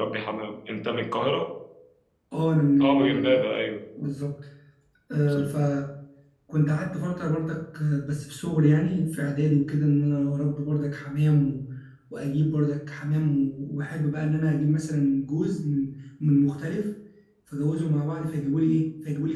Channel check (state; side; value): identical; both; correlation 1.00